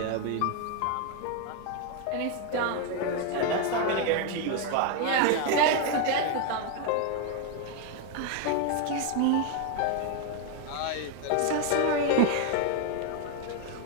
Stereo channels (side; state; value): both; different; correlation 0.01